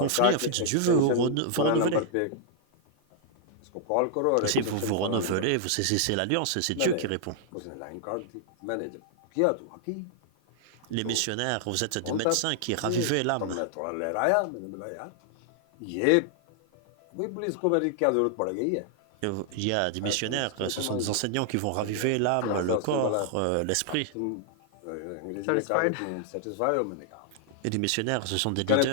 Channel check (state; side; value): different; both; correlation 0.00